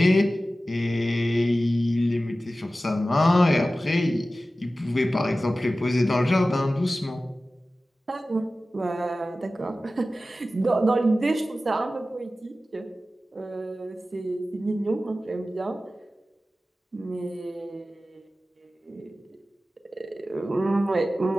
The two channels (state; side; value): normal; both; correlation 0.95